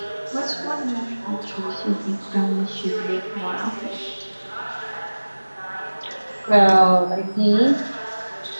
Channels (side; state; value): both; inverted; correlation -1.00